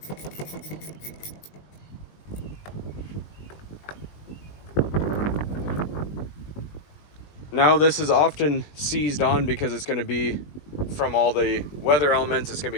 Now this is often seized on because it's going to be from all the weather elements, it's going to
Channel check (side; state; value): right; late; 20 ms